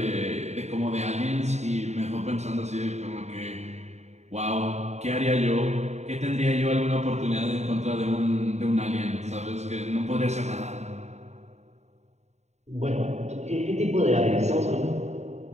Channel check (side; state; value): left; late; 0.32 ms